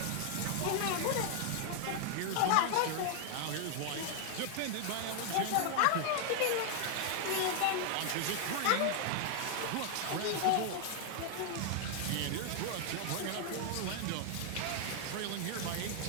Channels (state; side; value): different; both; correlation 0.00